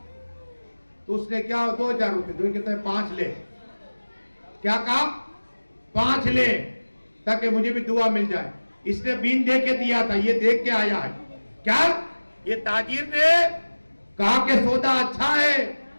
تو اس نے کیا 2000 روپیہ, تو کہتا ہے 5 لے. کیا کہا 5 لے تاکہ مجھے بھی دعا مل جائے. اس نے بین دے کے دیا تھا, یہ دیکھ کے آیا ہے. کیا یہ تاجر نے کہا کہ سودا اچھا ہے.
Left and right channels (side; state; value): both; inverted; correlation -1.00